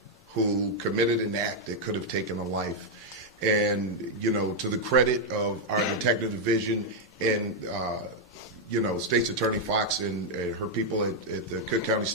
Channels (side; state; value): both; normal; correlation -0.01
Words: who committed an act that could have taken a life. And, to the credit of our detective division and, State's Attorney Fox and her people at the Cook County